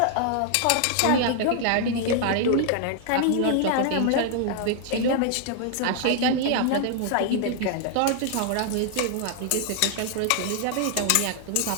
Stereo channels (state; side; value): different; both; correlation 0.00